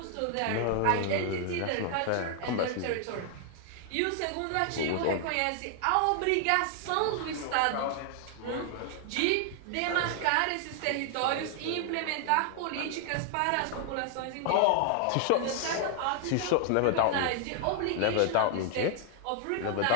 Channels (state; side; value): different; both; correlation 0.00